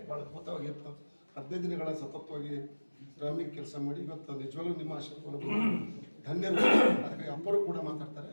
ಭಾಳ ಅದ್ಭುತವಾಗಿ 15 ದಿನಗಳ ಸತತವಾಗಿ ಶ್ರಾಮಿಕ ಕೆಲಸ ಮಾಡಿ ಇವತ್ತು ನಿಜವಾಗ್ಲೂ ನಿಮ್ಮ ಆಶೀರ್ವಾದ ಧನ್ಯರು. ಅದಕ್ಕಾಗಿ ಅಪ್ಪರು ಕೂಡ ಮಾತಾಡ್ತಾರೆ,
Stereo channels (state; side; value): inverted; both; correlation -1.00